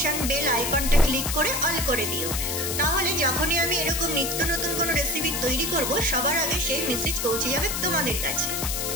বেল আইকনটা ক্লিক করে অল করে দিও। তাহলে যখনই আমি এরকম নিত্য নতুন কোনো রেসিপি তৈরি করব, সবার আগে সেই মেসেজ পৌঁছে যাবে তোমাদের কাছে।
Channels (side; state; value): left; noise; hiss, 2 dB below the sound